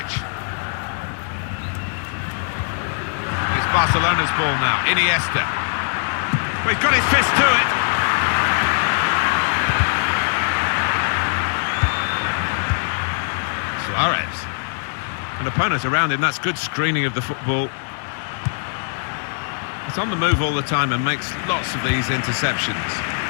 It's Barcelona's ball now. Iniesta. Well, he's got his fist to it. Suarez. An opponent around him, that's good screening of the football. He's on the move all the time and makes lots of these interceptions.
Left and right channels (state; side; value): silent; right; digital silence